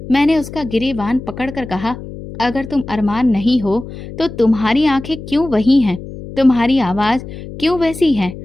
मैंने उसका गिरेबान पकड़कर कहा, अगर तुम अरमान नहीं हो तो तुम्हारी आंखें क्यों वही हैं, तुम्हारी आवाज क्यों वैसी है?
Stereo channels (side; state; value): left; noise; hum, 12 dB below the sound